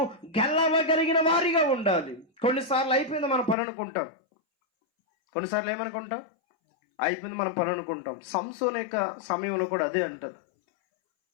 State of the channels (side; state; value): right; drops out; at 3.6 s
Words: గెలవగలిగిన వారిగా ఉండాలి. కొన్నిసార్లు అయిపోయింది మన పని అనుకుంటాం, కొన్నిసార్లు ఏమనుకుంటాం? అయిపోయింది మన పని అనుకుంటాం. సంసోను యొక్క సమయంలో కూడా అదే అంటారు.